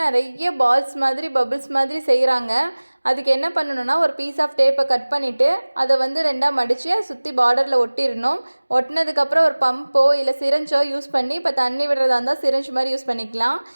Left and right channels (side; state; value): both; inverted; correlation -1.00